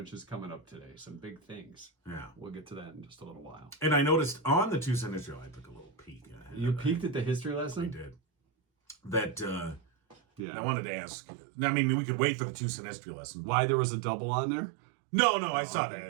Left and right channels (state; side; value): drops out; left; at 10.4 s